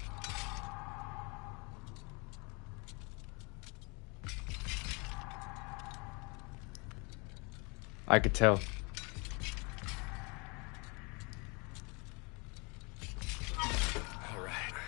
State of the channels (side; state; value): right; quieter; 30.7 dB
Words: I could tell. All right.